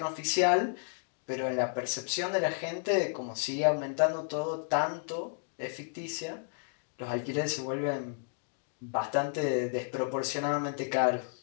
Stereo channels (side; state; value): right; silent; digital silence